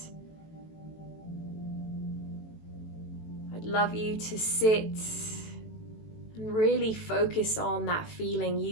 I'd love you to sit and really focus on that feeling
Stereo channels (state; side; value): late; right; 18 ms